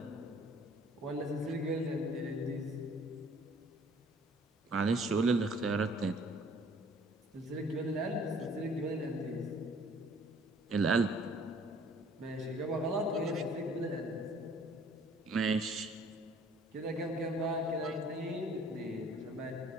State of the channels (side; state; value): both; normal; correlation 0.55